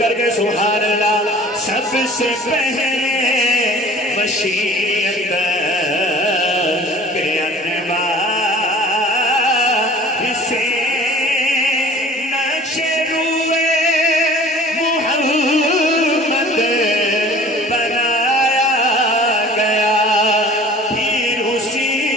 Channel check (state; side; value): normal; both; correlation 0.47